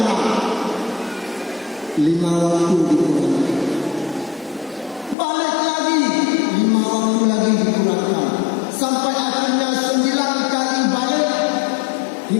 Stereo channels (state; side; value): drops out; right; at 5.2 s